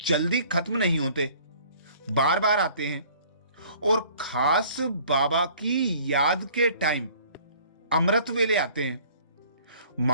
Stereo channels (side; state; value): both; inverted; correlation -0.53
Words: खत्म नहीं होते, बार बार आते हैं। और खास बाबा की याद के टाइम अमृत वेले आते हैं।